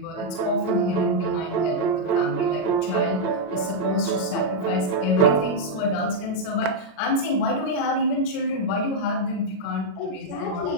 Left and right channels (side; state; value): right; late; 36 ms